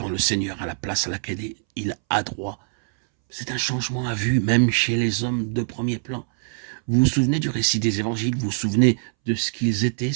le Seigneur a la place à laquelle il a droit. C'est un changement à vue, même chez les hommes de premier plan. Vous vous souvenez du récit des évangiles? Vous vous souvenez de ce qu'ils étaient,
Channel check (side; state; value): left; silent; 63 dB below the other